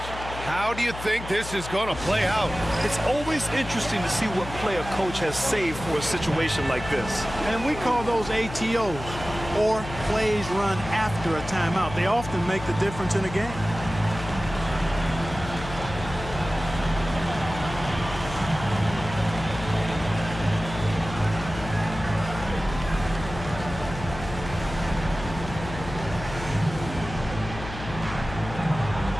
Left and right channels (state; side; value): noise; left; hum, 10 dB below the sound